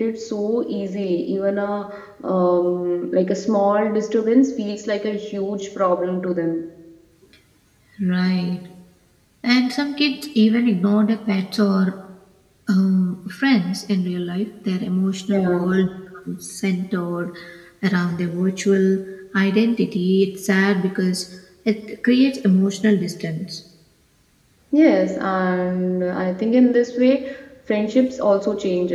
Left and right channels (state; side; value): identical; both; correlation 1.00